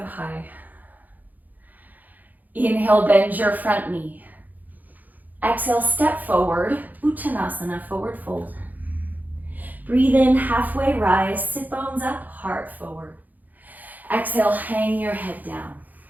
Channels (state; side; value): late; left; 0.082 ms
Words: high. Inhale, bend your front knee. Exhale, step forward, Uttanasana, forward fold. Breathe in, halfway rise, sit bones up, heart forward. Exhale, hang your head down,